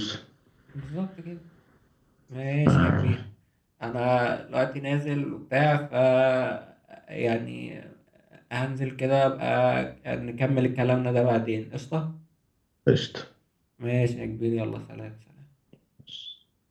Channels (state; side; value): identical; both; correlation 1.00